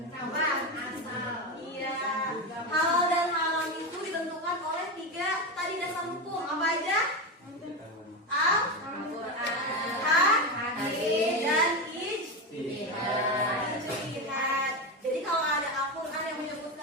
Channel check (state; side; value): normal; both; correlation 0.17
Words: Apa? Asal. Iya. Halal dan haram itu ditentukan oleh 3 tadi dasar hukum. Apa aja? Al-Quran, hadis, dan ijtihad. Jadi kalau ada Al-Quran yang